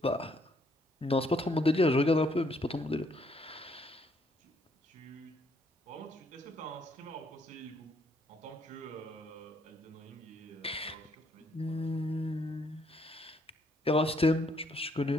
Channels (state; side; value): normal; both; correlation 0.69